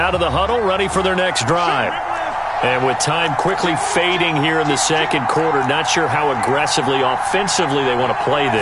of the huddle, ready for their next drive. And with time quickly fading here in the second quarter, not sure how aggressively, offensively they want to play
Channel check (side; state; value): both; identical; correlation 1.00